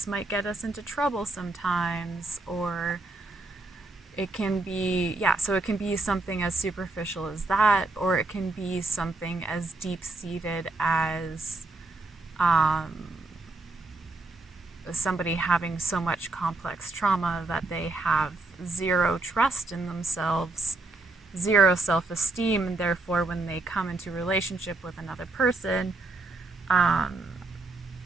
might get us into trouble sometimes, or it can be, so it can be something as superficial as that, or it can be something as deep-seated as somebody having so much complex trauma that they have zero trust in themselves, zero self-esteem, and therefore when they come into relationship with another person,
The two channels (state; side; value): quieter; left; 3.2 dB